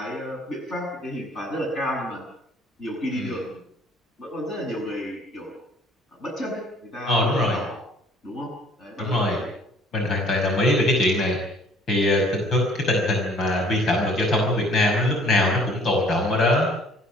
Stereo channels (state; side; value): normal; both; correlation 0.56